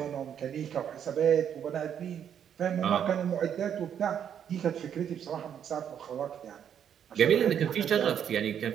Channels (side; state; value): left; quieter; 8.8 dB